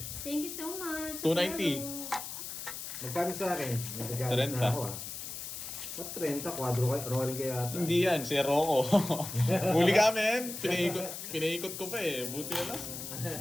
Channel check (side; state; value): left; noise; hiss, 8 dB below the sound